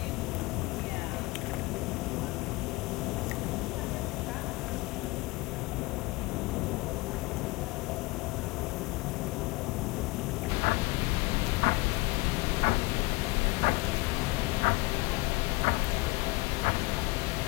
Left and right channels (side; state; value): right; quieter; 23.5 dB